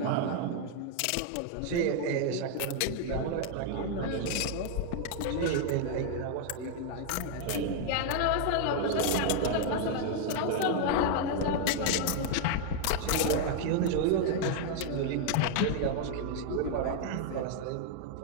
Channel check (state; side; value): different; both; correlation 0.00